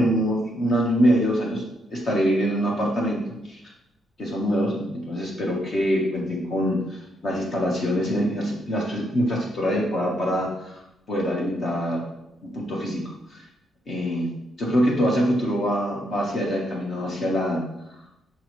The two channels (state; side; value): normal; both; correlation 0.77